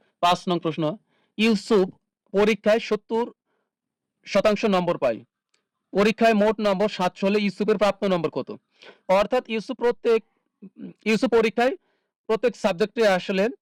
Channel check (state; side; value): identical; both; correlation 1.00